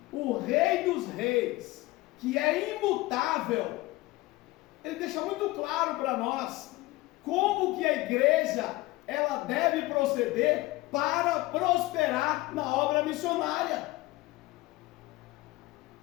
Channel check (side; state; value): right; quieter; 19.8 dB